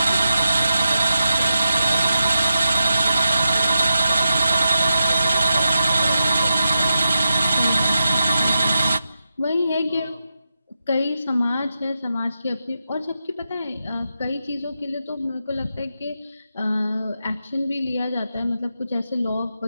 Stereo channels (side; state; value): both; inverted; correlation -0.89